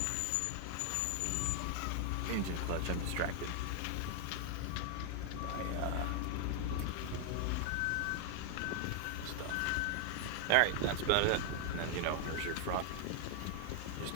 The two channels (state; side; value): different; both; correlation 0.00